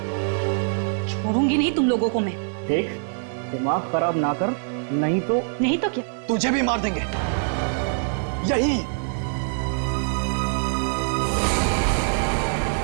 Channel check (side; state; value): left; silent; digital silence